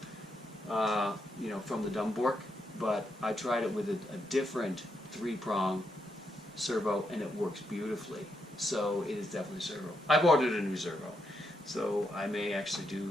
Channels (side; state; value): both; normal; correlation 0.80